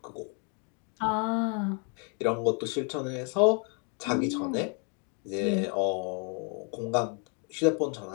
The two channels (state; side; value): quieter; right; 38.3 dB